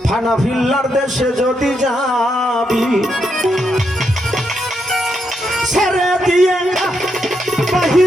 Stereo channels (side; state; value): both; normal; correlation 0.80